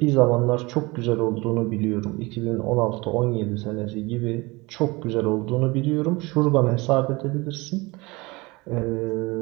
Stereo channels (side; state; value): left; quieter; 23.9 dB